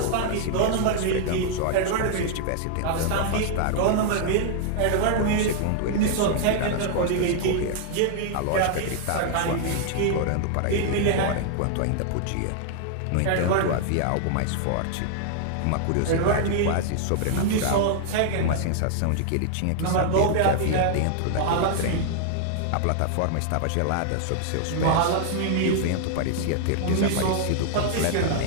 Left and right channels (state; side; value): different; both; correlation -0.01